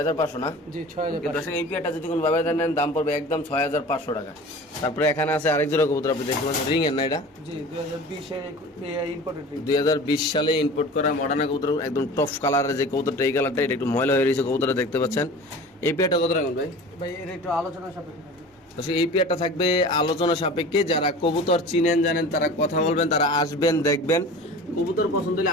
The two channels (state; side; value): normal; both; correlation 0.38